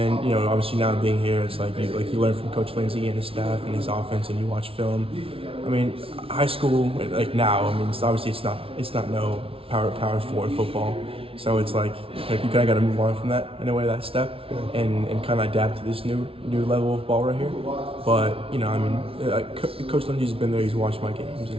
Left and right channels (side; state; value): left; late; 0.26 ms